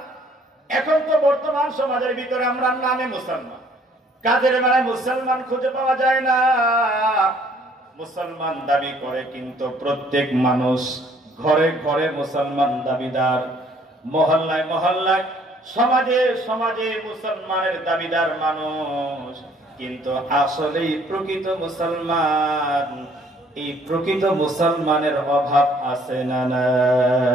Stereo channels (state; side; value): normal; both; correlation 0.61